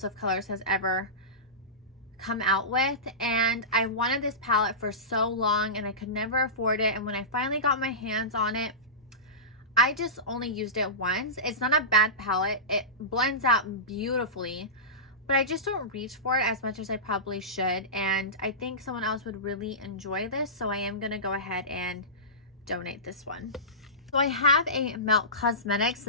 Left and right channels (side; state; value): both; normal; correlation -0.20